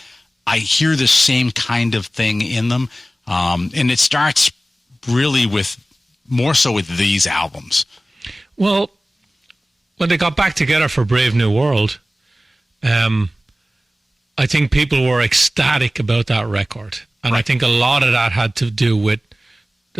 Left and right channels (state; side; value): normal; both; correlation 0.96